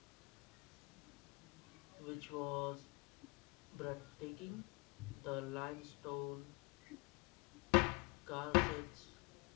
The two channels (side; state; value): right; quieter; 26.1 dB